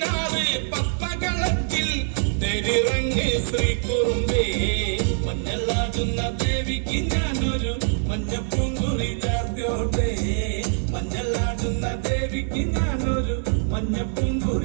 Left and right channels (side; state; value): left; silent; 60 dB below the other